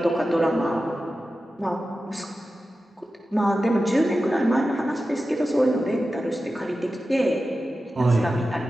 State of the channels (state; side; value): normal; both; correlation 0.93